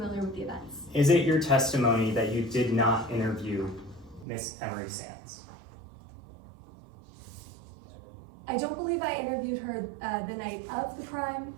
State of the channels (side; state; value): left; drops out; at 4.2 s